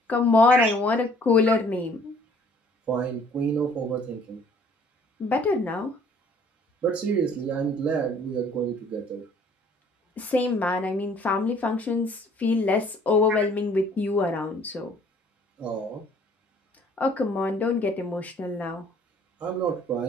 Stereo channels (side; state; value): both; normal; correlation 0.57